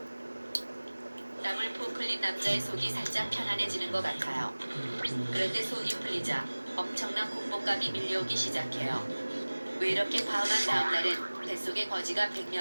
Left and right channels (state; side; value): inverted; both; correlation -1.00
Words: 땀을 푹 흘린 남자의 속이 살짝 편안해지는 것 같아요. 그런데 속이 풀리자 엄청난 공복감이 밀려오기 시작해요. 왜 이렇게 과음한 다음 날엔 뱃속에 거지가